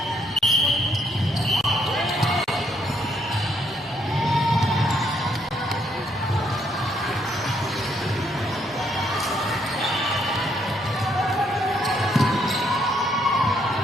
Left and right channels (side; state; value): both; normal; correlation 0.71